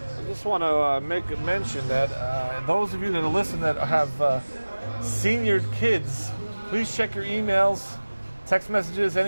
I just want to make a mention that those of you that are listening that have senior kids, please check your emails, text messages,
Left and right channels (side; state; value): both; inverted; correlation -1.00